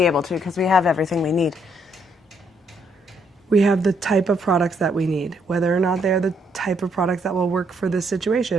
able to, because we have everything we need. We have the type of products that we need. Whether or not they're the type of products that will work for this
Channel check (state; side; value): normal; both; correlation 0.72